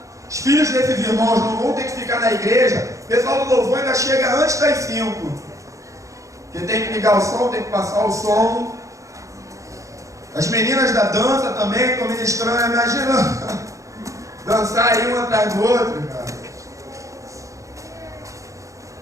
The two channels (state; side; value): late; left; 0.15 ms